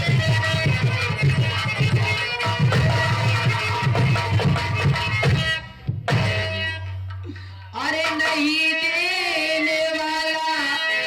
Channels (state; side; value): identical; both; correlation 1.00